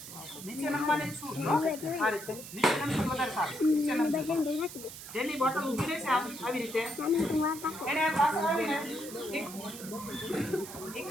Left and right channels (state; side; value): noise; right; hiss, 12 dB below the sound